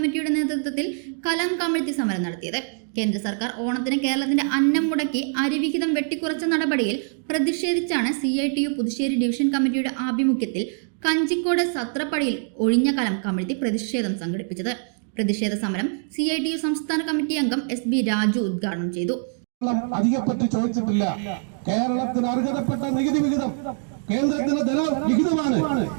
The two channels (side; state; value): left; silent; 63 dB below the other